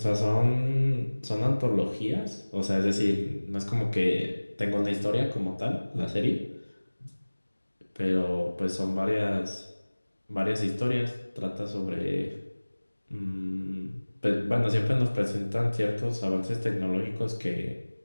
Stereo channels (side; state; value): both; inverted; correlation -1.00